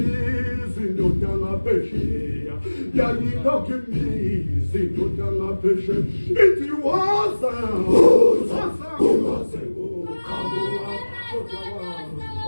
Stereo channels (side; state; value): both; inverted; correlation -1.00